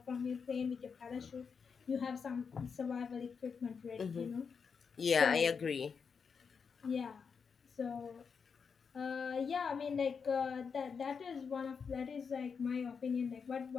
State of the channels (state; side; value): quieter; right; 5.9 dB